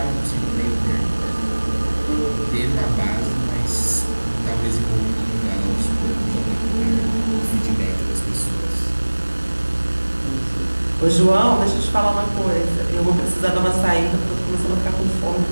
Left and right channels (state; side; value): inverted; both; correlation -1.00